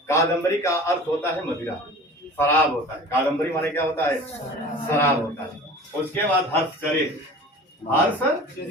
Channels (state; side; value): normal; both; correlation 0.41